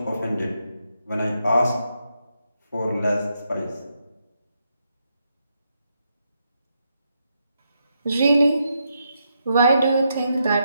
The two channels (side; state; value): both; inverted; correlation -0.81